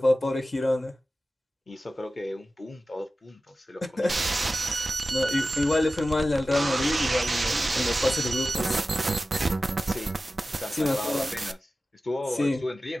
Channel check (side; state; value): both; normal; correlation 0.94